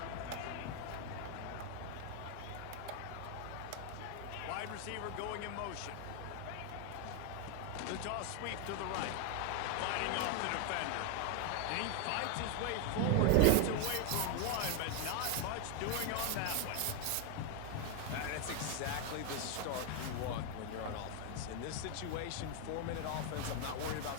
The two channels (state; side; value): different; both; correlation 0.01